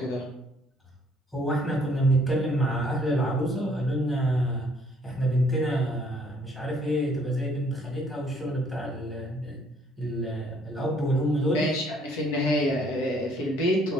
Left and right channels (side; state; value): both; normal; correlation 0.63